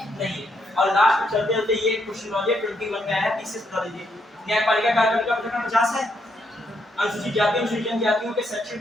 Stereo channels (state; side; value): normal; both; correlation 0.76